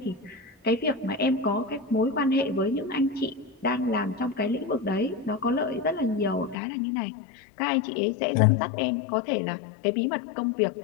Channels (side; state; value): right; drops out; at 6.6 s